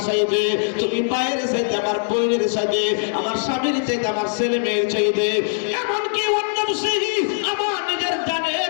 চাইতে, তুমি পায়ের চাইতে, আমার বইয়ের চাইতে, আমার স্বামীর চাইতে, আমার ছেলে মেয়ের চাইতে, এমনকি অন্য আমার নিজের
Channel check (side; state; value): right; silent; digital silence